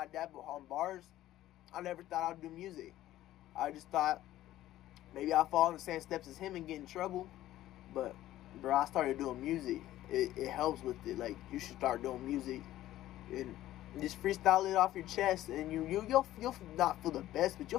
dad behind bars, I never thought I'd do music. I just thought maybe I'll fall in the same steps as him and get in trouble. But, bro, I started doing music. It helps with it. Like, you should start doing music and just freestyle it off your chest, and you'll not feel the best, but you'll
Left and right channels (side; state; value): right; quieter; 14.3 dB